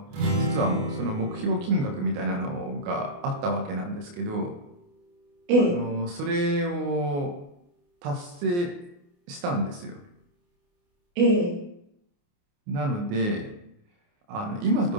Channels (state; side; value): late; left; 28 ms